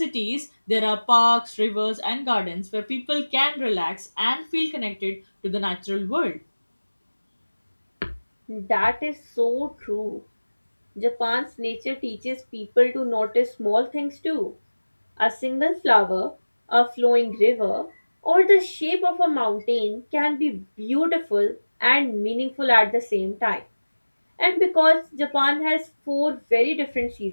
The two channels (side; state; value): both; inverted; correlation -1.00